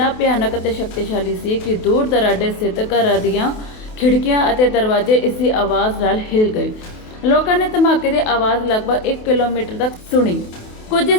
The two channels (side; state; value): right; late; 28 ms